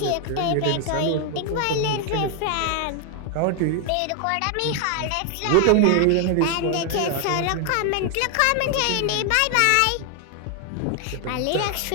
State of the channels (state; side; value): different; both; correlation 0.00